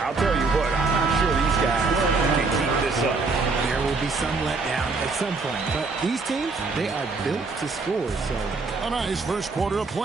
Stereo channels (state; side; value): quieter; left; 4.0 dB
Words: tell you what, I'm not sure these guys can keep this up. There will be some letdown at some point, but these teams, they are built to score, so. A nice first quarter of